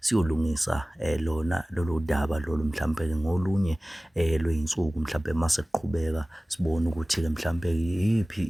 lona lolu daba lolu mhlambe ke ngolunye lweinsuku mhlambe mase siqhubeka sibone ukuthi ke mhlambe yipi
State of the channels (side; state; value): both; normal; correlation 0.97